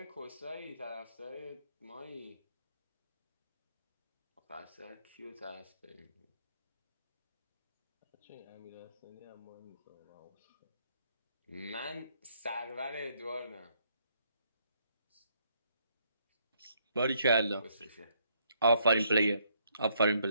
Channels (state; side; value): inverted; both; correlation -0.71